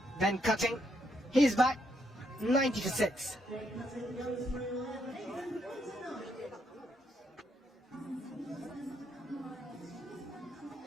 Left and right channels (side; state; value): both; normal; correlation 0.76